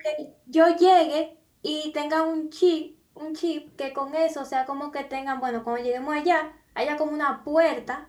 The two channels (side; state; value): both; identical; correlation 1.00